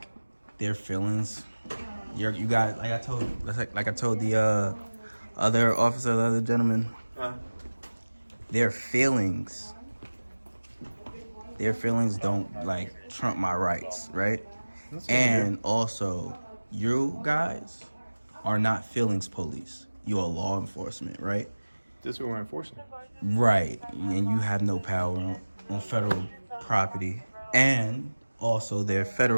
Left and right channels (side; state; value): both; inverted; correlation -1.00